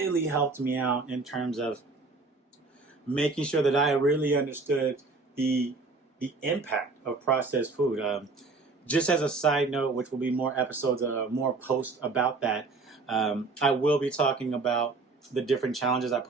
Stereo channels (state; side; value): quieter; left; 3.8 dB